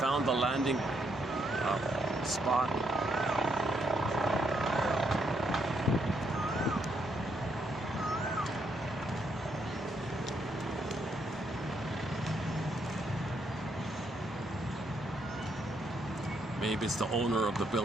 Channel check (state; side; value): normal; both; correlation 0.75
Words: the landing spot. Maybe it's the owner of the